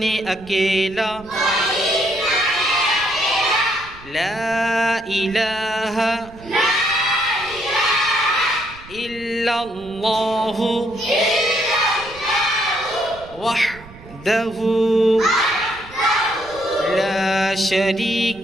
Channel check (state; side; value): noise; right; rumble, 20 dB below the sound